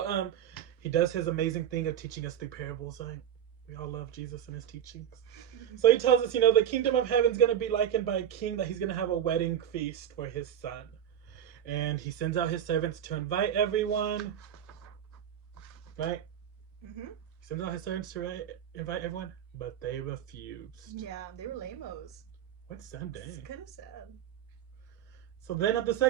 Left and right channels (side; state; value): left; quieter; 9.8 dB